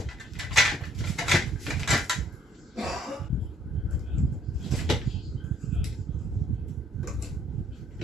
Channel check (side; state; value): both; normal; correlation 0.64